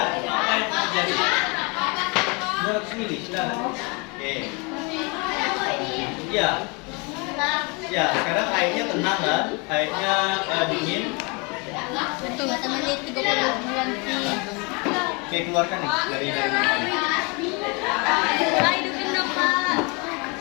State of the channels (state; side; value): quieter; right; 30.7 dB